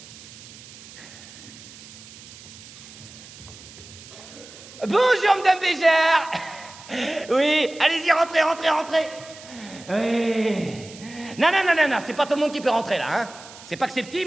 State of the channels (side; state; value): right; noise; hiss, 18 dB below the sound